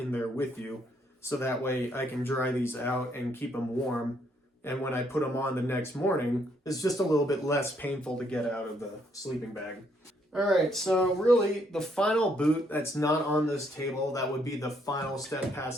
there with you. So that way I can dry these out and keep them warm. And when I put them on the next morning, it's just a little bit less painful to get out of the sleeping bag. All right, so really the final boot that's not on this table, that would be the final step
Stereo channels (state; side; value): normal; both; correlation 0.71